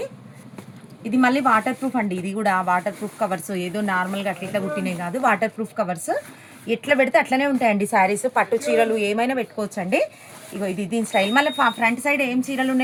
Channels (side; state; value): both; identical; correlation 1.00